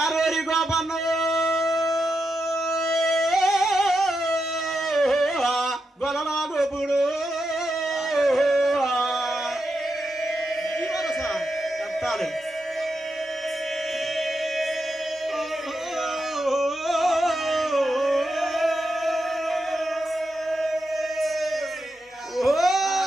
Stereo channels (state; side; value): normal; both; correlation 0.86